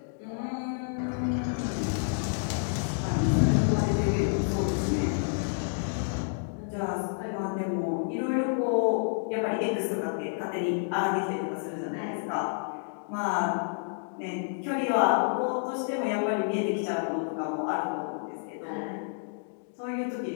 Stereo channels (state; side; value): silent; right; digital silence